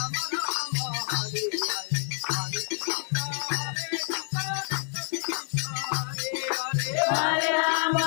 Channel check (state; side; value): silent; right; 59 dB below the other